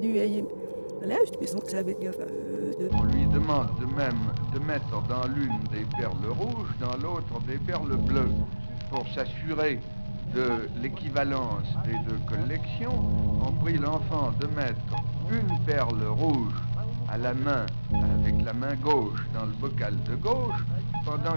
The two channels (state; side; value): inverted; both; correlation -1.00